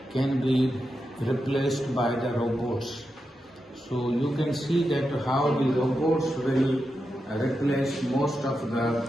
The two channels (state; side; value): normal; both; correlation 0.88